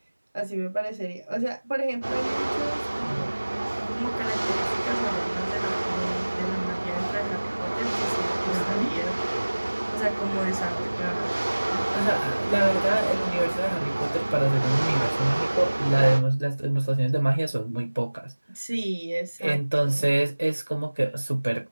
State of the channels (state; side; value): inverted; both; correlation -1.00